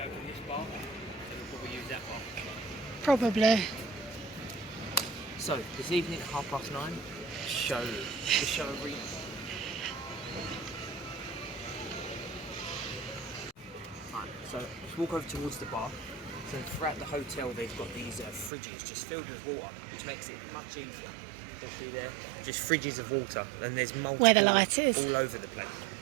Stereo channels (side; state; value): left; drops out; at 18.5 s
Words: open this bar, and we'll probably use that bar. Probably. So, this evening at 9:30, the show arena. Right, so let's walk over towards the bar. So throughout the hotel they've got these fridges just filled with water, which makes it much easier. You'll see there, just fridges of water, and there's multiple Where the light is. all over the place.